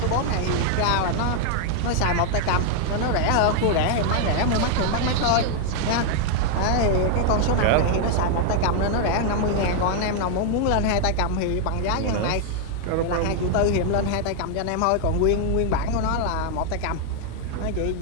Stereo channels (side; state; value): both; different; correlation 0.00